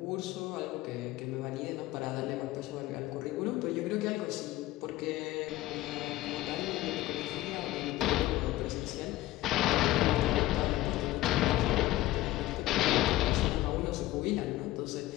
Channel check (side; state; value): right; quieter; 16.6 dB